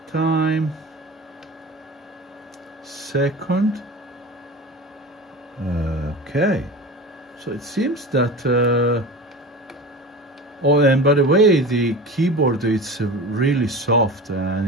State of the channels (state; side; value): normal; both; correlation 0.32